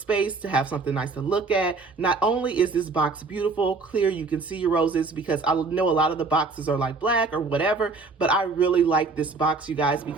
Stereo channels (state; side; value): quieter; left; 4.0 dB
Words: to have something nice to look at. Not only is this box beautiful, clear, you can see your roses, because I know a lot of the boxes are like black or whatever, but I really like this box, you guys,